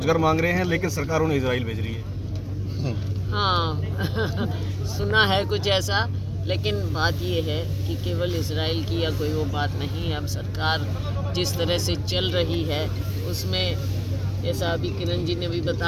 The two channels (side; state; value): both; identical; correlation 1.00